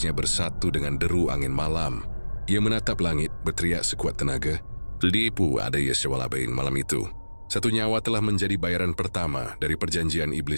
bersatu dengan deru angin malam. Ia menatap langit, berteriak sekuat tenaga. Lipu ada Yeswalabain malam itu. Satu nyawa telah menjadi bayaran pertama dari perjanjian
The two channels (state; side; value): inverted; both; correlation -1.00